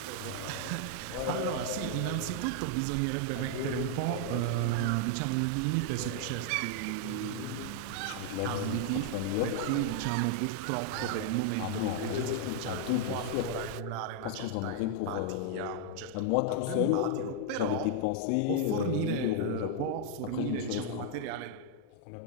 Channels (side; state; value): both; different; correlation 0.00